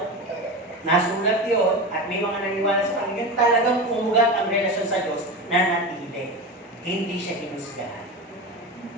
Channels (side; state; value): both; normal; correlation 0.24